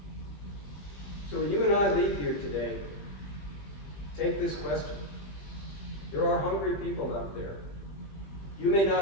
So when you and I leave here today, take this question. There are hungry people out there. You may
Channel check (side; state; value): right; late; 20 ms